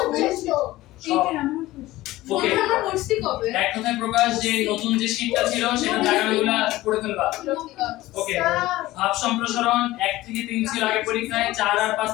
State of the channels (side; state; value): right; quieter; 17.3 dB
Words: ওকে, এক কথায় প্রকাশ যে নতুন যে শীটটা ছিল সেটা জায়গাগুলো পড়ে ফেলবা। ওকে, ভাব সম্প্রসারণ 1 থেকে 3 ছিল আগে পরীক্ষায়, 4 আর 5